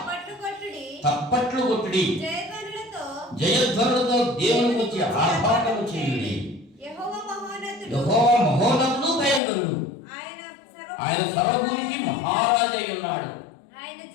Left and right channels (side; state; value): right; drops out; at 9.4 s